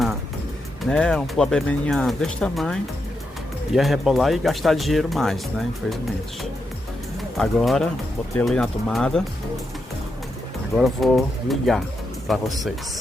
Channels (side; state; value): both; normal; correlation 0.84